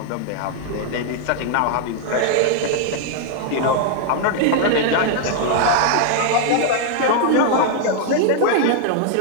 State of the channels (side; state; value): both; different; correlation 0.00